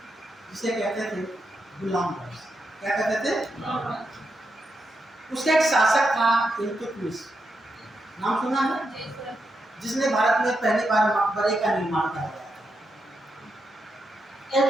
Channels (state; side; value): normal; both; correlation 0.84